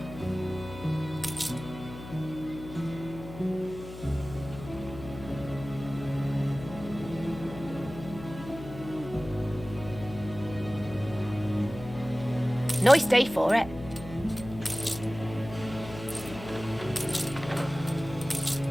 Nice day for it.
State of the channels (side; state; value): left; noise; hum, 13 dB below the sound